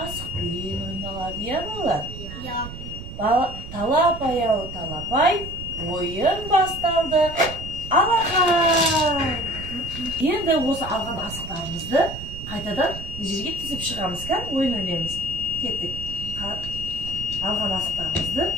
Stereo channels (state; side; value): noise; right; rumble, 10 dB below the sound